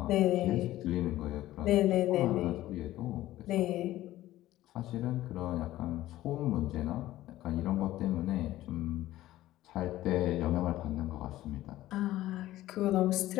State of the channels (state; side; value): quieter; right; 15.2 dB